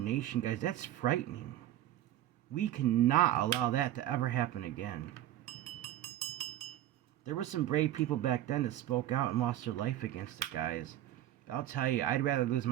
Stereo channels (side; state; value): left; quieter; 12.9 dB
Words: guys. That's frightening. We cannot allow that to ever happen again. There were some brave people back then that spoke out and lost their life against it, guys. I'll tell you, I'd rather lose